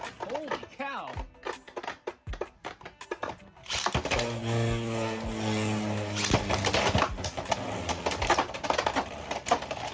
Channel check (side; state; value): both; identical; correlation 1.00